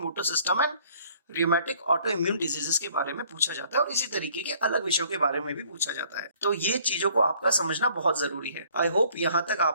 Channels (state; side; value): inverted; both; correlation -0.58